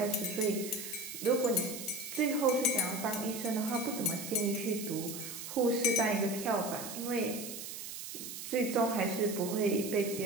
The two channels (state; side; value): noise; right; hiss, 9 dB below the sound